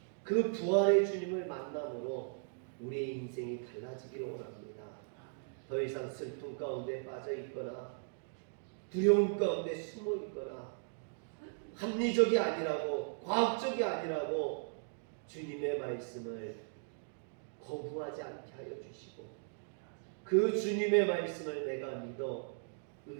그 부활의 주님을 만남으로 우리의 인생이 달라지기를 원합니다. 더 이상 슬픔 가운데 빠져 있거나 두려움 가운데 숨어 있거나 합리적이 아니라고 과학적이 아니라고 주님의 말씀을 거부하지 않게 하여 주시고 그 주님의 말씀을 내가 믿어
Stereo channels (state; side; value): silent; left; digital silence